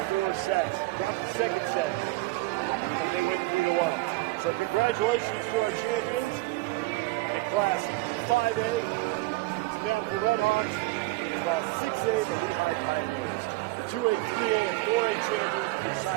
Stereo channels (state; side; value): quieter; left; 20.9 dB